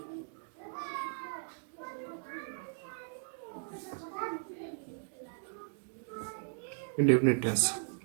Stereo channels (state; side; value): silent; left; digital silence